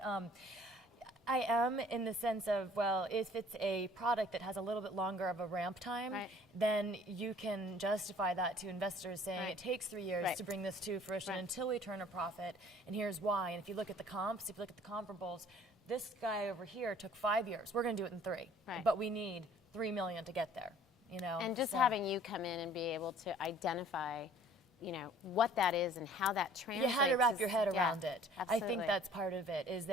I am, in the sense of, well, if it's a product that has a little bit longer of a ramp time, then you can justify that to investors, saying it takes 3 years to bring this to fruition until we turn a profit, and here's why. And if you look at the comps, if you look at the comparables, this guy over here took 5 years. We're going to do it in 3, but we need $3 million to get there. You know, and just having you come in and be able to identify, you know, what that is and how that translates. You had to wrap your head around it. Absolutely. I think that's part of it, is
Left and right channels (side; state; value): both; normal; correlation 0.53